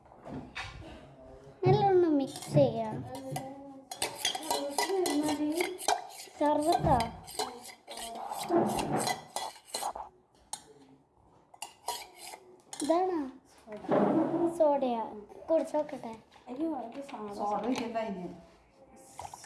നല്ലോണം മിക്സ് ചെയ്യാം. സർവത്താ ഇതാണോ സോഡയാ? കുടിച്ചോക്കട്ടെ.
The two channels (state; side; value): identical; both; correlation 1.00